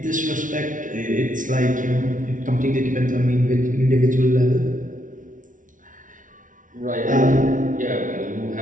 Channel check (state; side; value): late; left; 0.38 ms